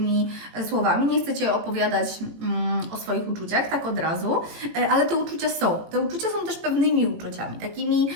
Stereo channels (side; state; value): left; late; 18 ms